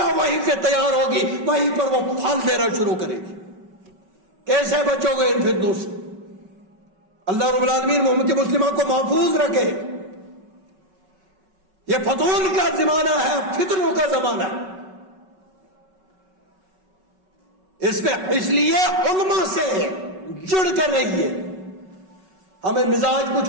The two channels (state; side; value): late; left; 5.3 ms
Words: وہیں سے تیار ہوگی، وہیں پر وہ پھل دینا شروع کرے گی. کیسے بچو گے ان فتنوں سے؟ اللہ رب العالمین امت مسلمہ کو محفوظ رکھے. یہ فتون کا زمانہ ہے، فتنوں کا زمانہ ہے. اس لیے علماء سے جڑ کر رہیے. ہمیں مزاج کچھ